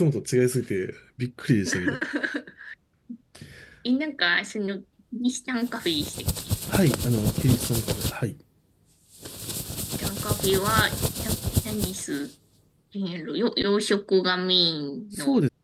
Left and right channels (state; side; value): identical; both; correlation 1.00